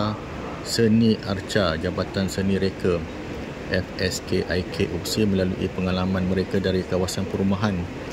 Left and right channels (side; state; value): both; identical; correlation 1.00